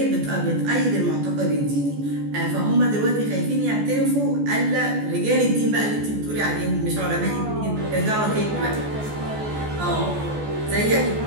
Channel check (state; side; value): late; left; 14 ms